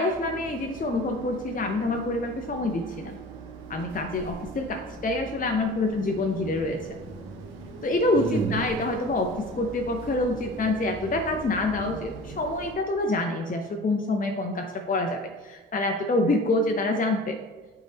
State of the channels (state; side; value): normal; both; correlation 0.40